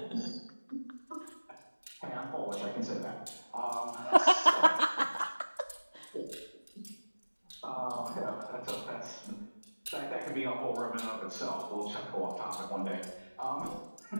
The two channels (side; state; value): both; inverted; correlation -1.00